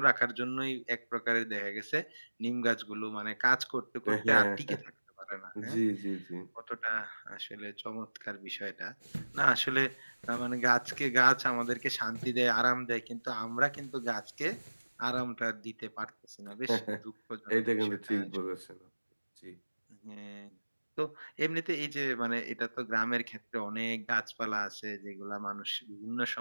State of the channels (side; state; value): both; inverted; correlation -1.00